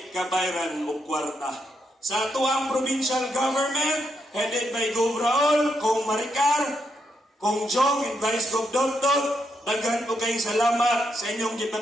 kabayran og kwarta. Sa tuang provincial government headed by Gov. Raul, Kong Maricar, Kong Jong, and Vice Gov. Dogdog, daghan po kayong salamat sa inyong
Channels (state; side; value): normal; both; correlation 0.80